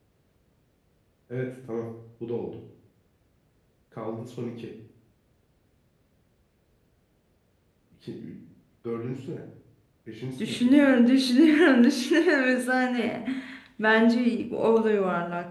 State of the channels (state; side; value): identical; both; correlation 1.00